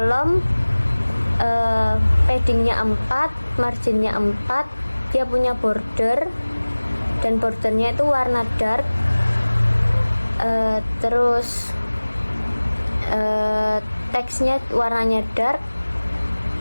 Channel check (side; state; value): both; inverted; correlation -1.00